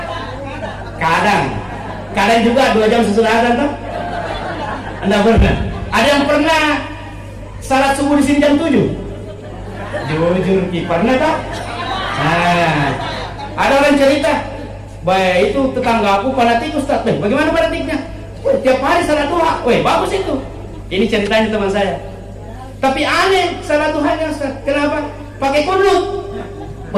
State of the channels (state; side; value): identical; both; correlation 1.00